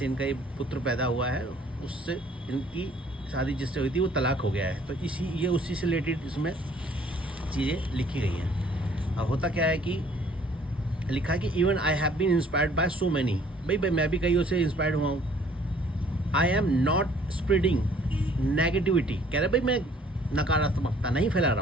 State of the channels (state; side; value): normal; both; correlation 0.58